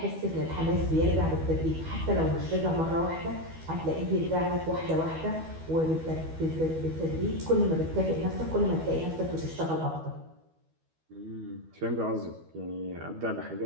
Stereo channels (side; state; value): left; late; 12 ms